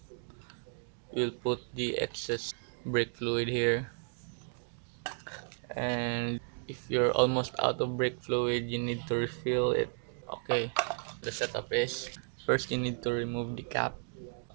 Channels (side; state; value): left; silent; 55 dB below the other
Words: We'll put the excess brake fluid here. And if you're almost out of brake fluid, you need to refill it. Okay, the setup is first you need to remove the cap